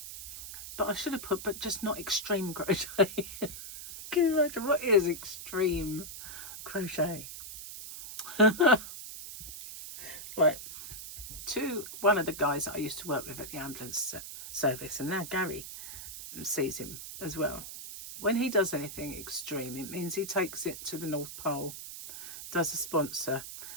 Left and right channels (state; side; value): noise; right; hiss, 10 dB below the sound